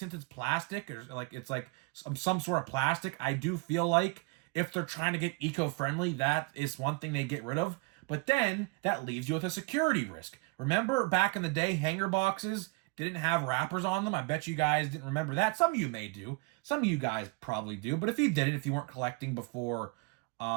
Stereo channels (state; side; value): quieter; left; 27.7 dB